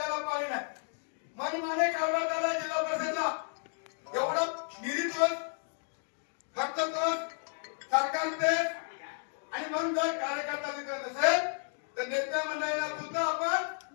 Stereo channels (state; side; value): silent; right; 56 dB below the other